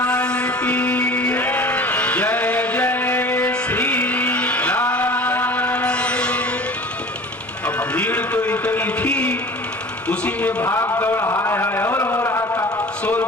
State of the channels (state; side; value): normal; both; correlation 0.41